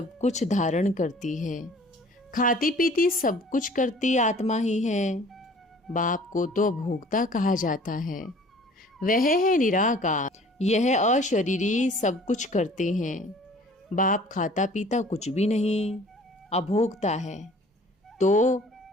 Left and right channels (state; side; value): normal; both; correlation 0.50